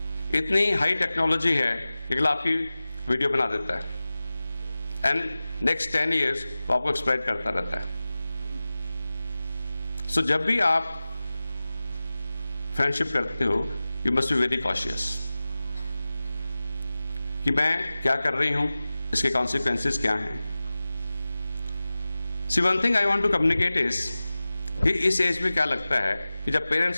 इतनी हाई टेक्नोलॉजी है कि अगला आपकी वीडियो बना देता है एंड नेक्स्ट 10 years वो आपको एक्सप्लॉइट करता रहता है। सो जब भी आप फ्रेंडशिप करते हो, you must be very cautious कि मैं क्या कर रही हूं, इसके कॉन्सिक्वेंसेस क्या हैं। See one thing I want to communicate is कि इस एज में क्या लगता है कि जब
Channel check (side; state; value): both; inverted; correlation -0.96